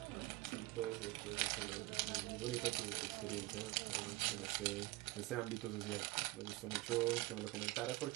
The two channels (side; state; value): left; quieter; 20.8 dB